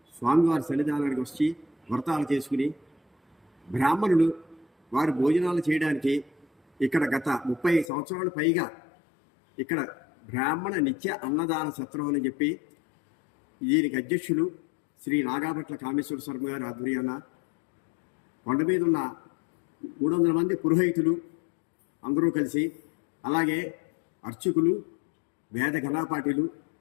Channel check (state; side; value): drops out; right; at 7.9 s